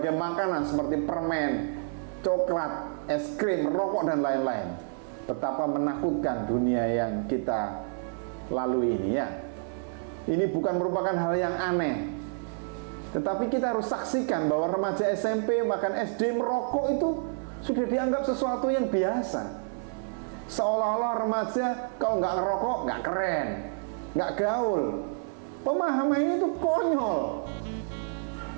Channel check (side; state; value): left; silent; 59 dB below the other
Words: makanan seperti permen, coklat, es krim, rokok, dan lain-lain. Betapa menakutkan dunia yang kita lalui ini, ya. Ini bukan merupakan hal yang aneh, tetapi kita harus saksikan bahwa remaja SMP bahkan SD merokok itu sudah dianggap sesuatu yang biasa. Seolah-olah remaja kalau nggak ngerokok nggak keren, nggak gaul. Pemahaman ini tuh konyol.